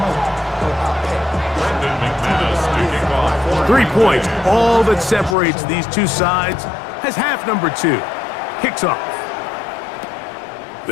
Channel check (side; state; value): right; drops out; at 5.4 s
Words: 3 points, all that separates these two sides, as half number 2 kicks off.